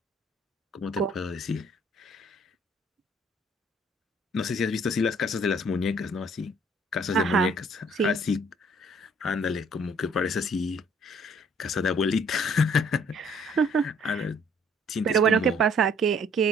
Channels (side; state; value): both; normal; correlation 0.60